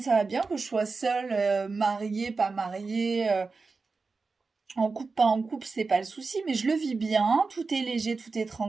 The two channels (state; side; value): quieter; left; 4.3 dB